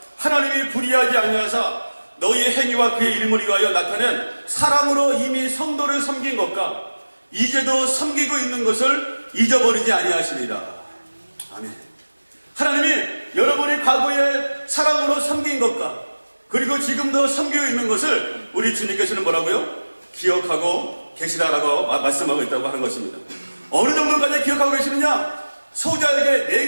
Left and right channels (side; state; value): both; inverted; correlation -1.00